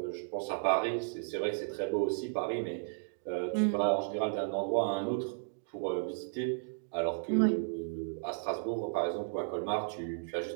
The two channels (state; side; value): silent; left; digital silence